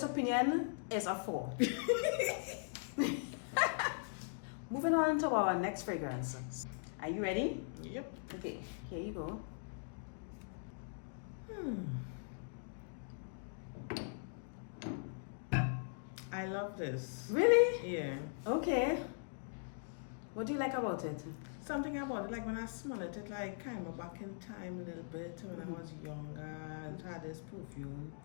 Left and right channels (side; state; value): right; silent; digital silence